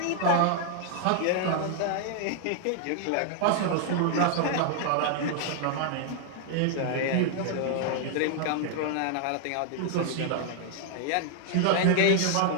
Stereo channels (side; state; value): both; different; correlation -0.01